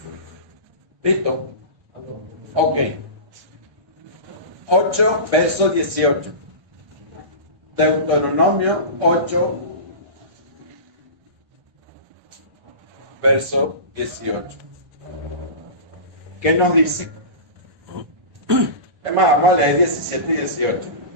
¿Listo? Ok. 8, verso 18. Deuteronomio 8, verso 18. ¿Qué nos dice? Es más, vamos a leer 17 y 18.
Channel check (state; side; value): late; left; 1.5 ms